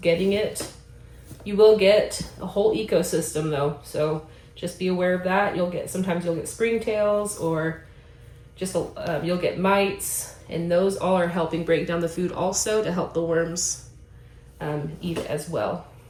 it. You will get a whole ecosystem though, so just be aware of that. Sometimes you'll get springtails, or just you'll get mites, and those all are helping break down the food also to help the worms eat it as well.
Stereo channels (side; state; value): both; identical; correlation 1.00